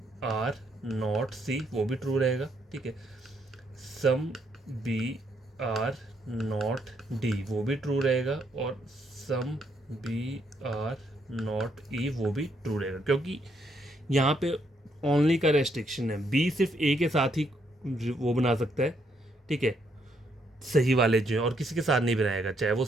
are not C वो भी ट्रू रहेगा, ठीक है। Some B are not D वो भी ट्रू रहेगा, और some B are not E वो भी ट्रू रहेगा, क्योंकि यहाँ पे ओनली का रेस्ट्रिक्शन है। बी सिर्फ ए के साथ ही वो बना सकता है, ठीक है, सही वाले जो है, और किसी के साथ नहीं बनाएगा, चाहे वो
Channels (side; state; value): both; normal; correlation 0.74